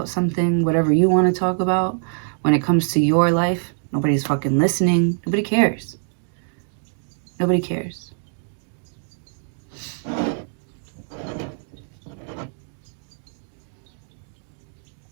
something, whatever you want to talk about, when it comes to your life, nobody's fucking listening. Nobody cares. Nobody cares.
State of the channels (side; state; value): left; silent; 62 dB below the other